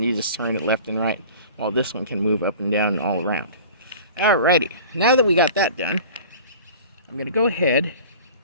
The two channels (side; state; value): both; inverted; correlation -0.41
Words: you just turn it left and right, while this one can move up and down and all around. Alrighty, now that we got that done, I'm going to go ahead